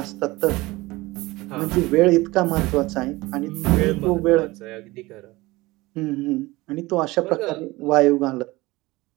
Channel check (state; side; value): quieter; left; 20.7 dB